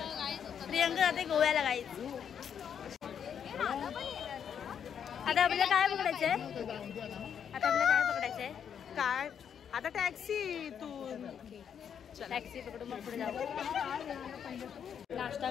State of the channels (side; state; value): right; quieter; 8.0 dB